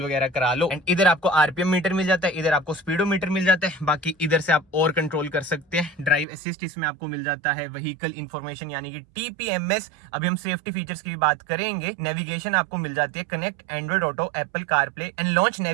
वगैरह करा लो। एंड इधर आपको RPM मीटर मिल जाता है, इधर आपको स्पीडोमीटर मिल जाता है। बाकी इधर से आप और कंट्रोल कर सकते हैं। ड्राइव असिस्ट इसमें आपको मिल जाता है, व्हीकल इन्फॉर्मेशन यानी कि TPMS। अभी हम सेफ्टी फीचर्स की भी बात करेंगे। नेविगेशन आपको मिल जाती है, connect Android Auto, Apple CarPlay and launch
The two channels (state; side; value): drops out; left; at 6.2 s